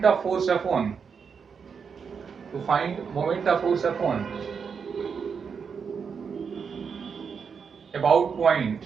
of force F1, to find moment of force F1 about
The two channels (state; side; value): quieter; left; 6.2 dB